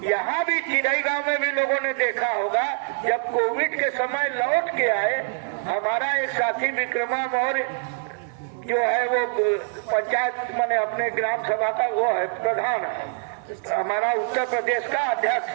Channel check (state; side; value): silent; left; digital silence